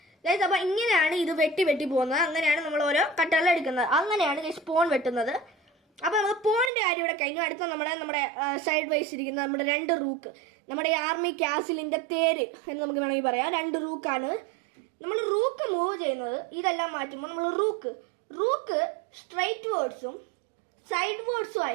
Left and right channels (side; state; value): left; drops out; at 6.7 s